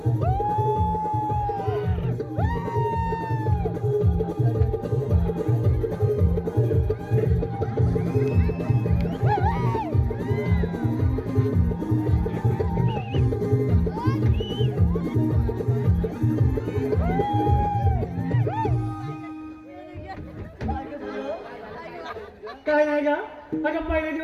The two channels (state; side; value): identical; both; correlation 1.00